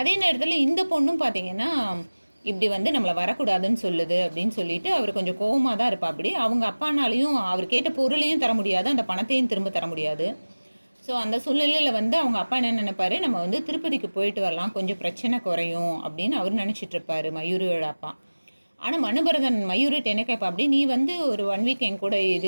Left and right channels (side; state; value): both; inverted; correlation -1.00